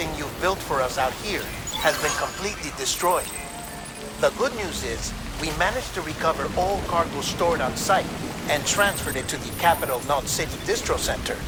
you've built for us out here has been completely destroyed. The good news is, we managed to recover all cargo stored on site and transferred it to the Capital Knot City Distro Center.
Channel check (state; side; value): identical; both; correlation 1.00